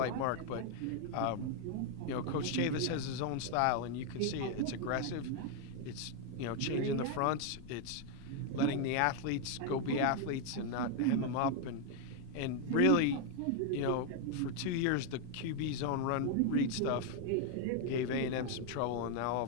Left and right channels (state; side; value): different; both; correlation 0.00